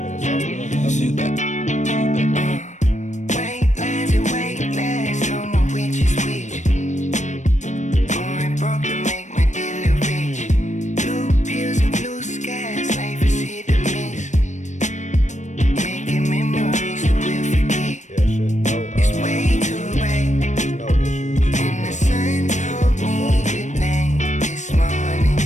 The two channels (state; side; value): late; right; 0.35 ms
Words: Wastelands and wastelands, don't know which is which. Orange broke to make my dealer rich. Blue pills and blue skies, life is hit or miss. Making memories that we'll forget. Yeah, shit. It's way too bright. No issues. And the sun told me good night this morning.